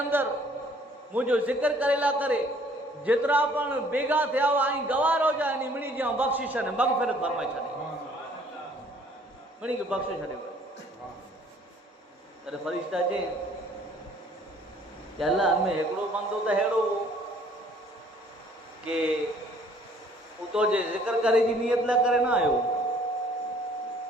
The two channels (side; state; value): both; normal; correlation 0.58